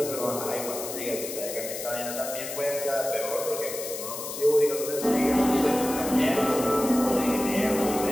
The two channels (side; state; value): left; noise; hiss, 8 dB below the sound